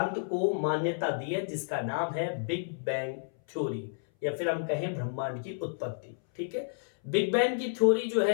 को मान्यता दी है, जिसका नाम है बिग बैंग थ्योरी, या फिर हम कहें ब्रह्मांड की उत्पत्ति, ठीक है। बिग बैंग की थ्योरी जो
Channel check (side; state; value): right; silent; 57 dB below the other